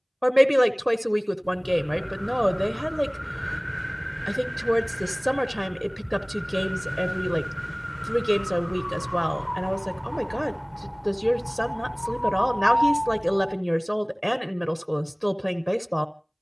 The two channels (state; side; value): identical; both; correlation 1.00